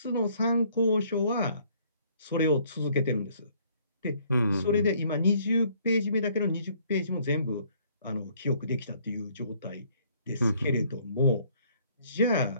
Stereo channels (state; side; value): inverted; both; correlation -0.62